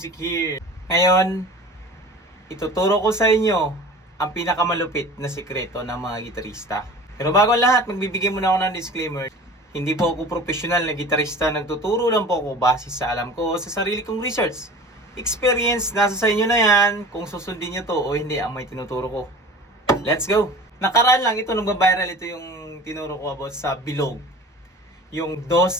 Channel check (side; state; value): both; normal; correlation 0.40